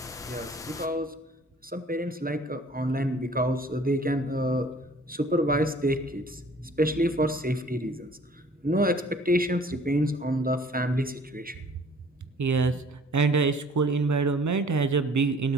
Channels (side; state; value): both; normal; correlation 0.53